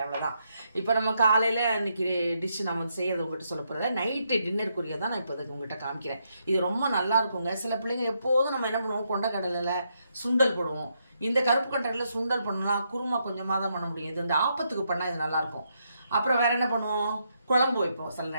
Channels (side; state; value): both; inverted; correlation -0.79